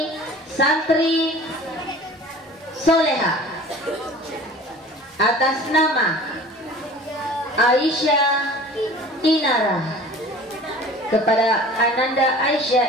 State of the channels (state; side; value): normal; both; correlation 0.43